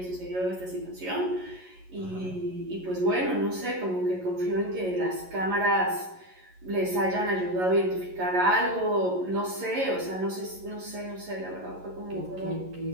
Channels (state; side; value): late; left; 11 ms